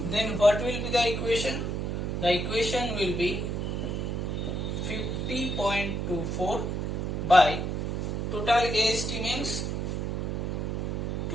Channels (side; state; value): right; noise; hum, 1 dB below the sound